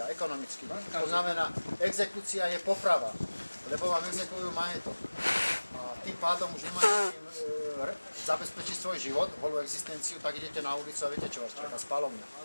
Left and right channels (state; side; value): inverted; both; correlation -1.00